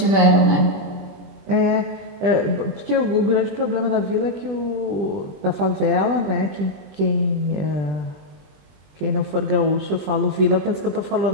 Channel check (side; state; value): left; late; 20 ms